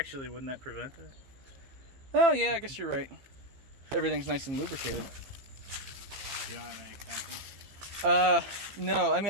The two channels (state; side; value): late; left; 15 ms